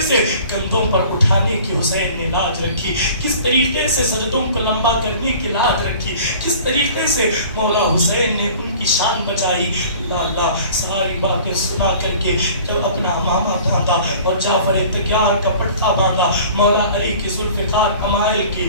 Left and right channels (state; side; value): inverted; both; correlation -0.46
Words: سے کندھوں پر اٹھانے کی حسین نے لاج رکھی، کس طریقے سے سجدوں کو لمبا کرنے کی لاج رکھی، کس طریقے سے مولا حسین نے ان کی شان بچائی. اللہ اللہ ساری باتیں سنا کر کے جب اپنا امامہ ڈھانپا اور جعفر تیار کا پٹھا باندھا مولا علی کی ذوالفقار امائل کی،